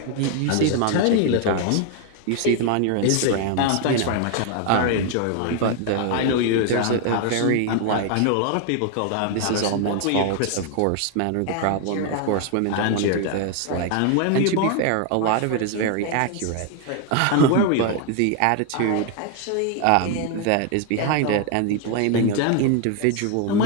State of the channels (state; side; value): different; both; correlation 0.01